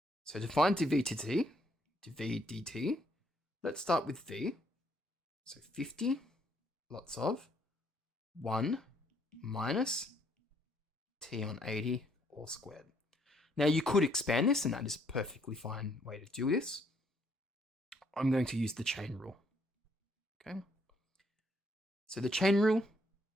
So to find dv dt, let's start with v. So 50 lots of 1 minus T on 80 all squared. Now you could expand this, and that is a perfectly fine way to do this. I'm going to use the chain rule. Okay. So the chain rule,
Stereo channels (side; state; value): both; normal; correlation 0.69